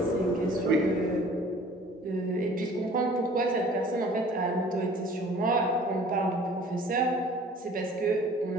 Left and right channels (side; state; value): both; normal; correlation 0.49